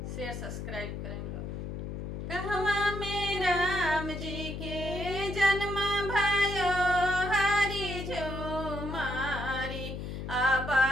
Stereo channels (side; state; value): left; noise; hum, 6 dB below the sound